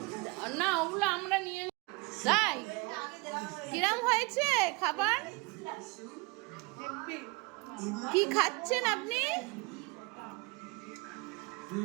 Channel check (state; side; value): quieter; left; 27.1 dB